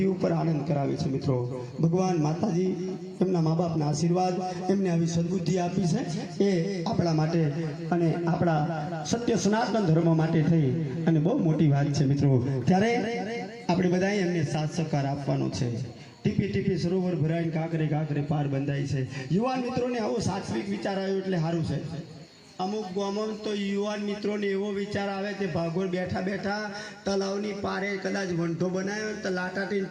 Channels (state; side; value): identical; both; correlation 1.00